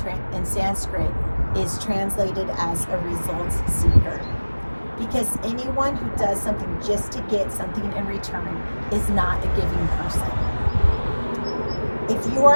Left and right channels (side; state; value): both; inverted; correlation -1.00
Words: Sanskrit is translated as a results seeker. Because anyone who does something just to get something in return is not a giving person. If you